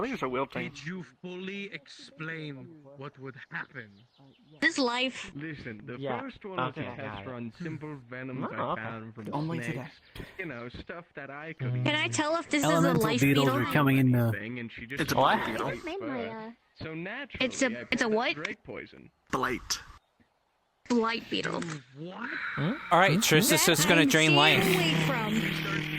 think it's a will thing. did you fully explain what would happen? This life. Listen, the Yeah. first one was Okay, a test got it. run, simple venoms Oh, I okay. found from Only snakes. today. You know, stuff that I could Can I tell if this Elemental is a life beetles beetle? are coming in. It's a what? So naturally, It's a what? Drake poison. Blight. Blight beetle. What? All right, Trisyra's just gonna drain life.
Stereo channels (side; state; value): both; identical; correlation 1.00